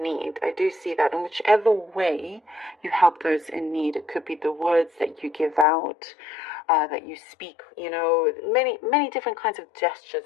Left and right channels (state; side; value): drops out; right; at 5.7 s